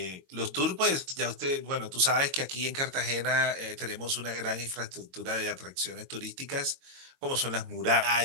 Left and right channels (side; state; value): left; late; 22 ms